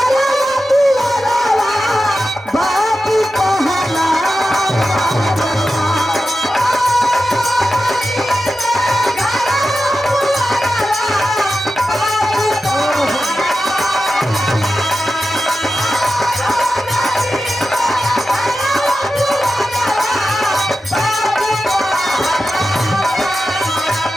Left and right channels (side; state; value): both; normal; correlation 0.92